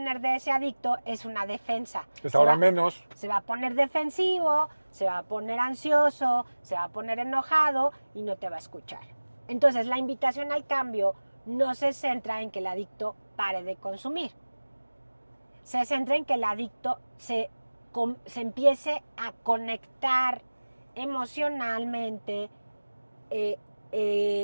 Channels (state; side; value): inverted; both; correlation -1.00